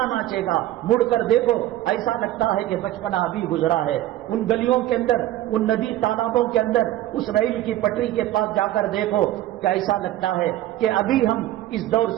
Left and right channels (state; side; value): quieter; left; 14.4 dB